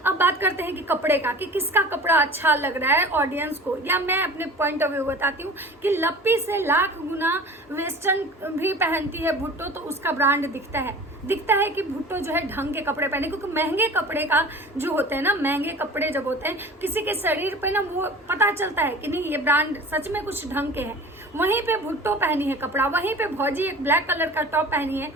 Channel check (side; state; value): both; normal; correlation 0.40